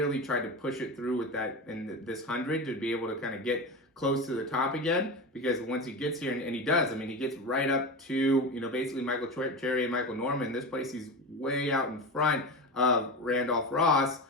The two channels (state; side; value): normal; both; correlation 0.23